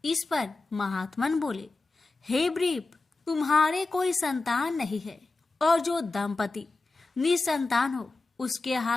इस पर महात्मन बोले, हे ब्रीप, तुम्हारे कोई संतान नहीं है और जो दंपति निसंतान हो उसके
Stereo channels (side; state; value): right; quieter; 3.4 dB